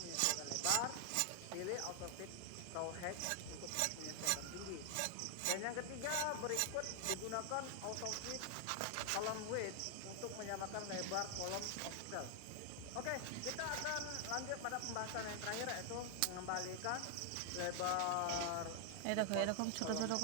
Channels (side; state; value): both; different; correlation 0.00